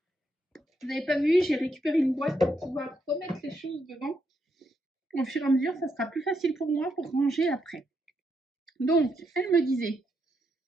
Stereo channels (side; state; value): both; normal; correlation 0.80